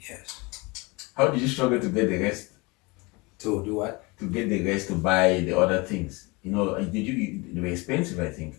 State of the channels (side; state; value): right; quieter; 26.0 dB